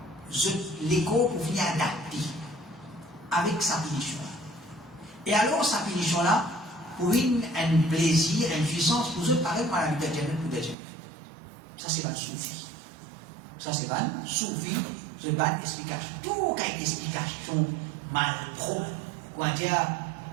l'écho pour venir adapter avec sa pénition. Et alors, sa pénition là, pour un plaisir, une puissance, pour eux, pareil, par la vie de Jannah ou de Jannah. Ça, c'est pas le soufi. Ça, c'est pas le soufi. C'est pas une explication. Tout cas une explication mal propre. Quoi dire,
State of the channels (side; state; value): left; drops out; at 10.8 s